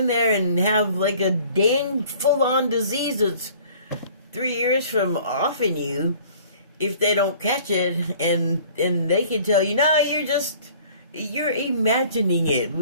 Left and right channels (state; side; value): inverted; both; correlation -0.51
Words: there and have like a dang full-on disease that's 3 years from offing you if they don't catch it, and they can tell you, no, you're imagining it,